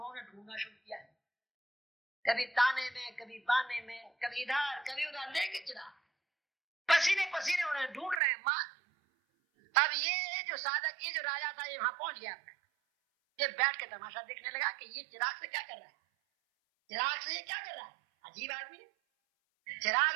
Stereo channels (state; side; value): drops out; left; at 8.2 s